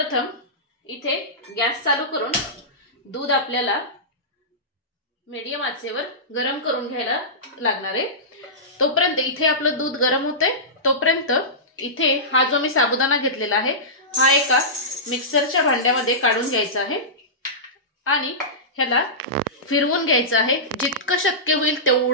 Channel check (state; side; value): normal; both; correlation -0.17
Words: इथे गॅस चालू करून दूध आपल्याला मीडियम आचेवर गरम करून घ्यायला लागणार आहे। तोपर्यंत इथे आपलं दूध गरम होतंय, तोपर्यंत इथे हा जो मी साबुदाणा घेतलेला आहे हा एका मिक्सरच्या भांड्यामध्ये काढून घ्यायचा आहे आणि ह्याला फिरवून घ्यायचं आहे। जितकं शक्य होईल